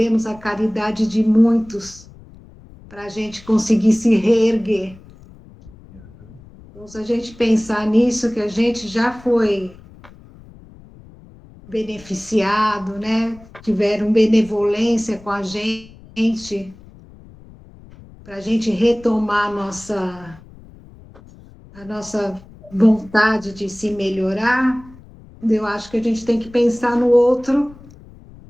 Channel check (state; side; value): noise; left; rumble, 22 dB below the sound